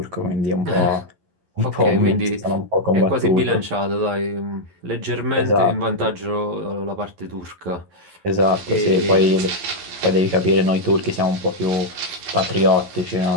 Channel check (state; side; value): late; left; 11 ms